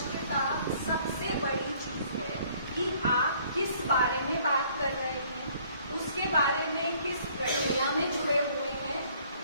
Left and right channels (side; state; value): both; inverted; correlation -0.59